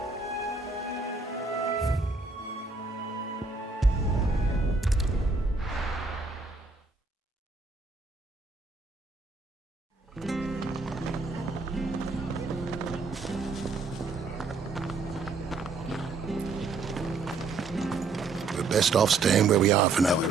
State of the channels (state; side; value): quieter; left; 4.0 dB